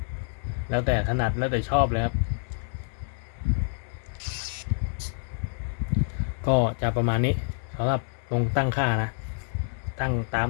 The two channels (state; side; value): silent; right; digital silence